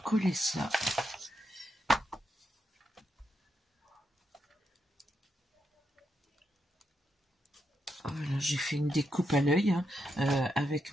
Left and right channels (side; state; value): both; normal; correlation 0.83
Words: Voilà, j'ai fait une découpe à l'œil avec